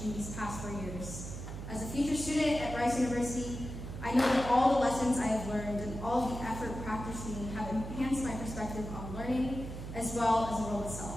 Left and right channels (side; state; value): right; noise; hum, 8 dB below the sound